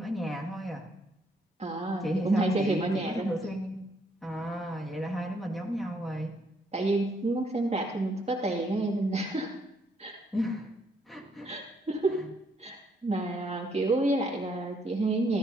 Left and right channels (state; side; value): normal; both; correlation 0.71